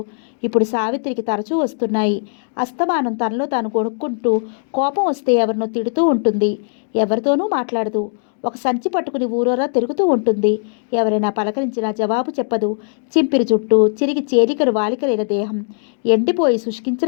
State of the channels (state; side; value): silent; right; digital silence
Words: ఇప్పుడు సావిత్రికి తరచూ వస్తున్నాయి. అస్తమానం తనలో తాను కొనుక్కుంటూ కోపం వస్తే ఎవరినో తిడుతూ ఉంటుంది. ఎవరితోనూ మాట్లాడదు. ఒక సంచి పట్టుకుని ఊరోరా తిరుగుతూ ఉంటుంది. ఎవరైనా పలకరించినా జవాబు చెప్పదు. చింపిరి జుట్టు, చిరిగి చేలికలు వాలికలైన దేహం, ఎండిపోయి